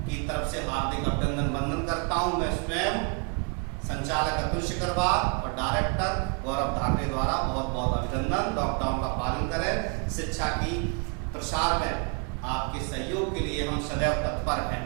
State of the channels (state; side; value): quieter; left; 35.9 dB